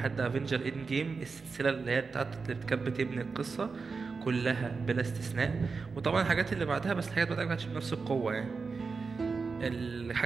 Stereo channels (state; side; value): quieter; left; 4.7 dB